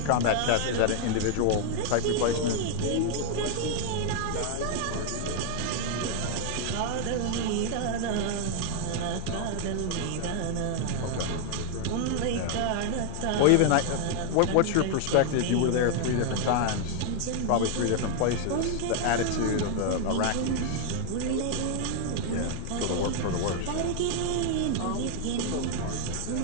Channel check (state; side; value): different; both; correlation 0.00